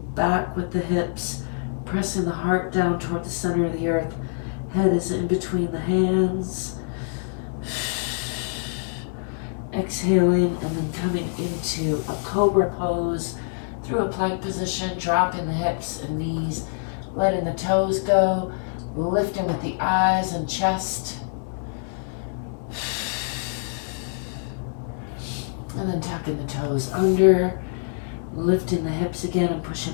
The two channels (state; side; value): silent; right; 62 dB below the other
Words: back with the hips, pressing the heart down toward the center of the earth. Head is in between the hands. Exhaling and then coming into a cobra pose through a plank position, dropping the hips and knees, letting the toes go, lifting with the eyes and chest. And then tucking the toes under, lifting the hips again and